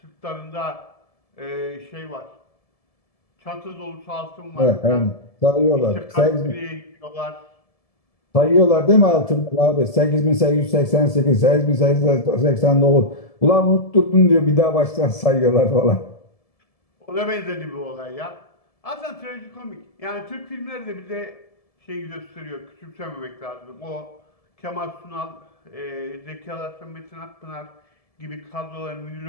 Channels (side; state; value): right; late; 1.7 ms